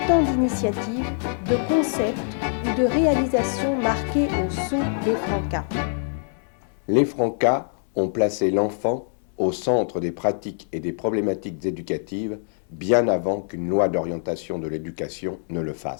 d'initiatives, de concepts ou de réalisations marquées au sceau des Francas. Les Francas ont placé l'enfant au centre des pratiques et des problématiques éducatives bien avant qu'une loi d'orientation de l'éducation ne le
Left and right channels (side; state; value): right; silent; 62 dB below the other